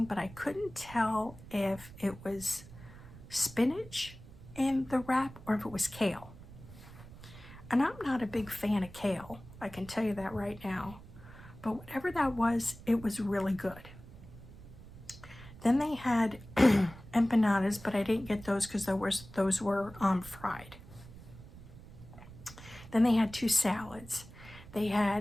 but I couldn't tell if it was spinach in the wrap or if it was kale. And I'm not a big fan of kale, I can tell you that right now. But whatever that was, it was really good. Then they had empanadas, but I didn't get those because those were fried. Then they had 2 salads. They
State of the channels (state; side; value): noise; right; rumble, 17 dB below the sound